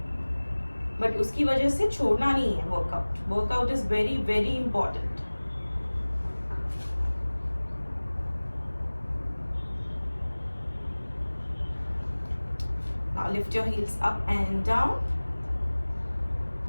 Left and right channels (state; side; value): inverted; both; correlation -1.00